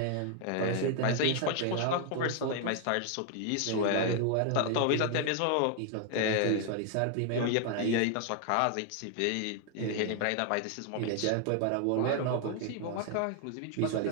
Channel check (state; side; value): different; both; correlation 0.00